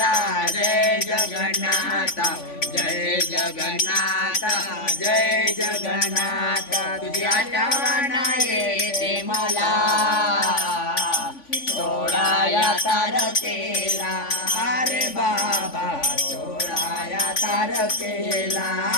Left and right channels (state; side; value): late; right; 3.5 ms